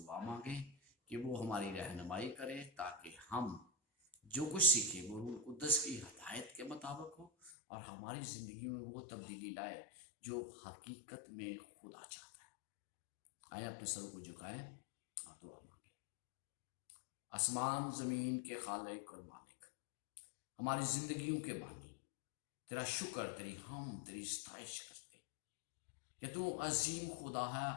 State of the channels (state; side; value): drops out; right; at 7.5 s